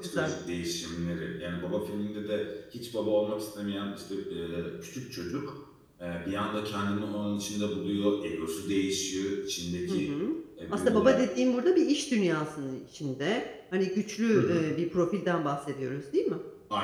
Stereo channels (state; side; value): identical; both; correlation 1.00